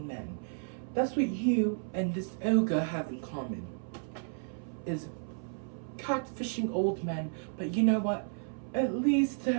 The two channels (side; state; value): left; silent; 56 dB below the other